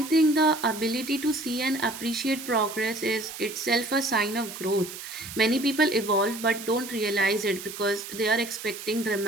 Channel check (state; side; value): noise; right; hiss, 11 dB below the sound